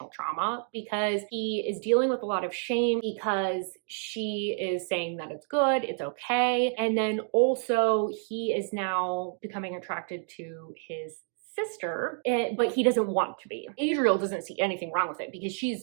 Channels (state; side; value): silent; left; 57 dB below the other